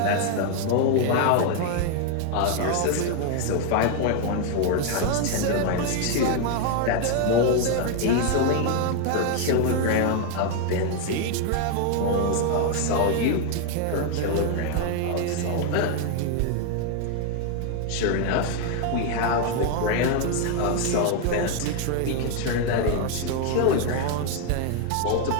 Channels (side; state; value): both; different; correlation 0.00